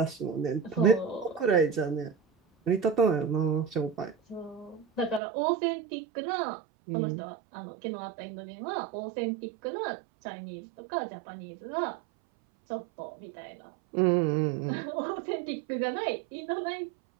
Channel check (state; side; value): drops out; left; at 5.2 s